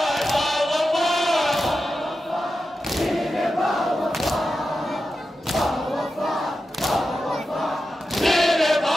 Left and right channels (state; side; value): normal; both; correlation 0.91